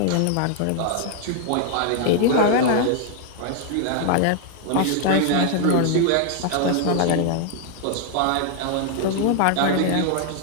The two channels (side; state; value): both; different; correlation 0.00